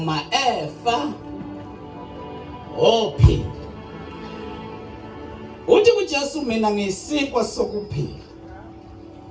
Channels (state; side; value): identical; both; correlation 1.00